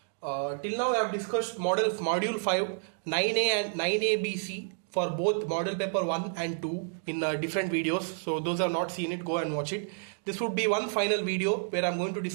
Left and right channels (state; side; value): silent; left; digital silence